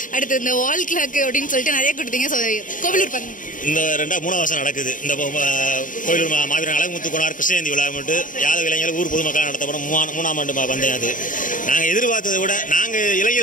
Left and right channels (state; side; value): late; right; 0.38 ms